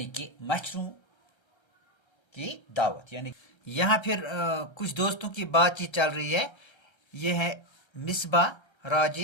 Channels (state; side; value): late; right; 1.3 ms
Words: कि मच्छरों की दावत। यानी यहाँ फिर कुछ दोस्तों की बातचीत चल रही है। ये है मिसबा,